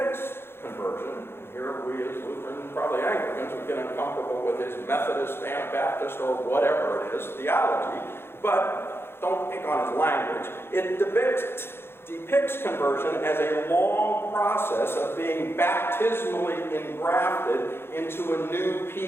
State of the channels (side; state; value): right; late; 0.11 ms